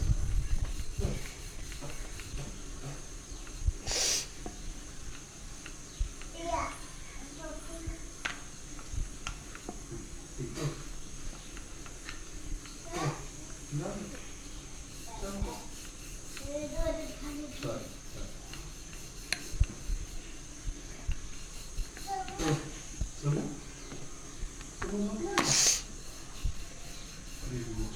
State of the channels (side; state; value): both; identical; correlation 1.00